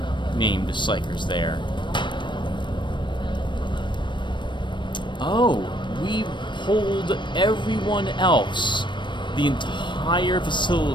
named psychers there. Oh, we pulled everyone else. The entire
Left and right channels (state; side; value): late; right; 0.22 ms